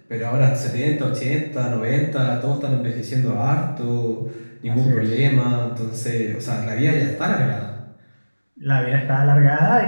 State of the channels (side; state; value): both; inverted; correlation -1.00